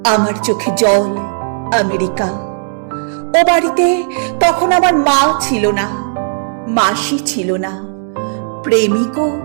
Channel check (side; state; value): left; silent; digital silence